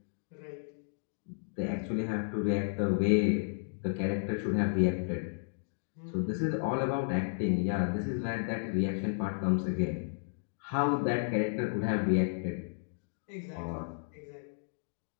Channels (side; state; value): right; silent; digital silence